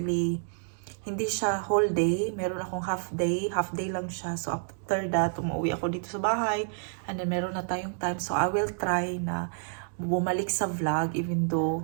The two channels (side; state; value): left; silent; digital silence